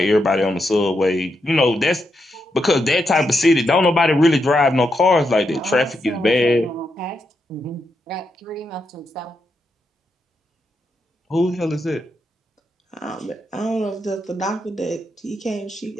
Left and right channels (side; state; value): both; normal; correlation 0.83